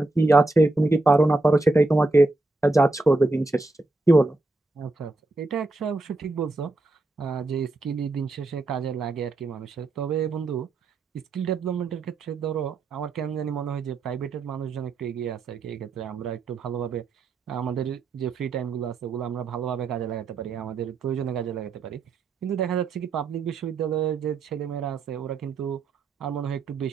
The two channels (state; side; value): quieter; left; 3.1 dB